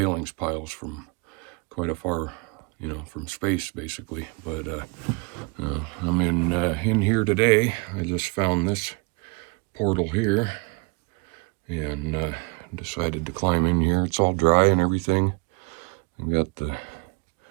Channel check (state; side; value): quieter; left; 30.1 dB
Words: piles from quite a far, from space basically. But I'm in here today. I just found this portal here and decided to climb in here. It's all dry and everything. I've got the